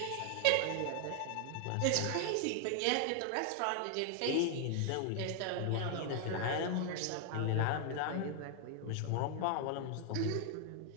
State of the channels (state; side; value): different; both; correlation 0.00